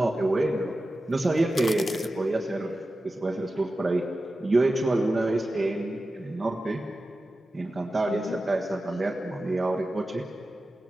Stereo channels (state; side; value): normal; both; correlation 0.93